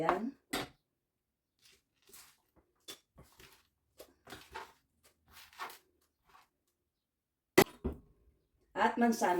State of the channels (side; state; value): both; identical; correlation 1.00